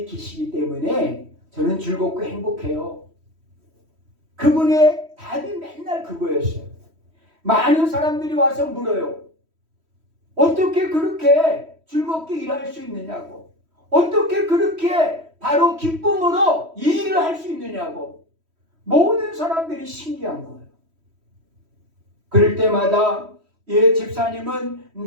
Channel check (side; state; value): left; late; 3.1 ms